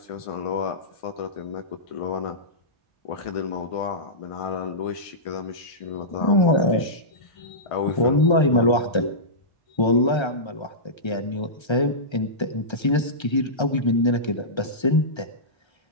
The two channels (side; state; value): right; late; 1.3 ms